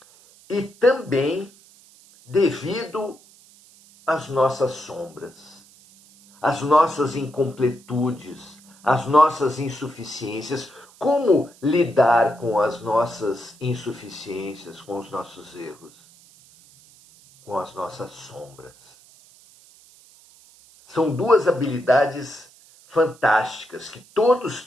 E também devido às nossas sombras, às nossas incompletudes, às nossas insuficiências. Como lidar com as nossas insuficiências, com os nossos erros, com as nossas sombras? São duas habilidades fantásticas que todos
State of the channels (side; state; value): right; noise; hiss, 26 dB below the sound